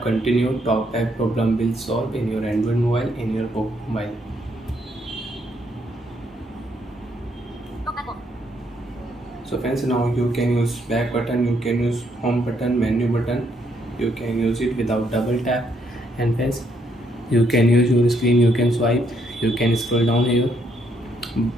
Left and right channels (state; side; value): normal; both; correlation 0.73